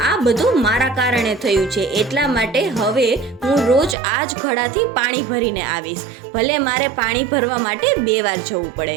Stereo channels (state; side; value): drops out; left; at 4.0 s